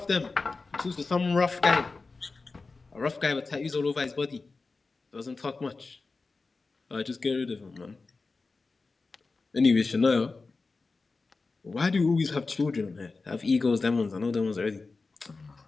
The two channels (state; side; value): quieter; right; 3.9 dB